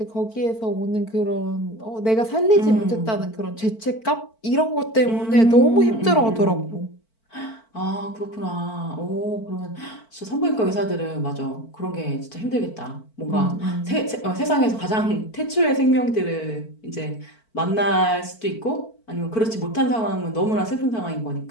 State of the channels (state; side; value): late; right; 4.5 ms